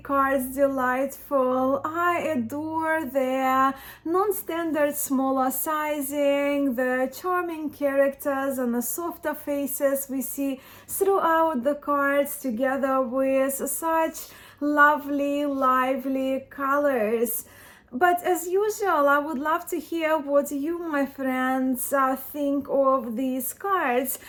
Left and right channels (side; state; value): both; identical; correlation 1.00